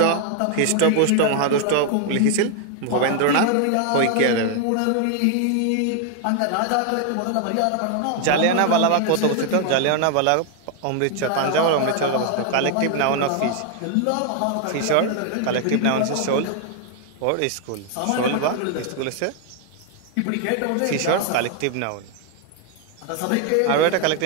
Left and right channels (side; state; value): both; different; correlation 0.00